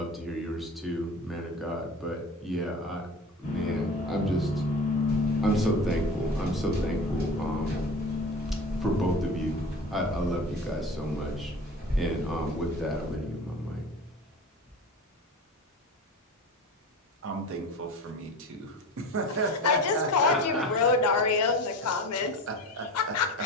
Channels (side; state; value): both; normal; correlation 0.33